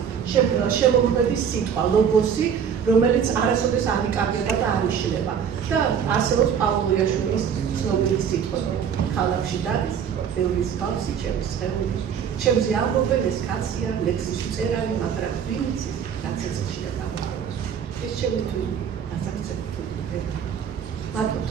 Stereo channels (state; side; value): quieter; left; 7.7 dB